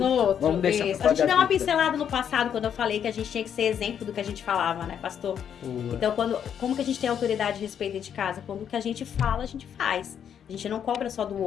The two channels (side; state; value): right; quieter; 8.6 dB